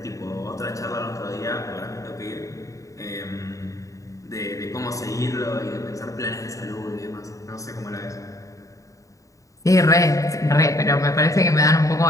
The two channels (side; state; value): right; late; 0.16 ms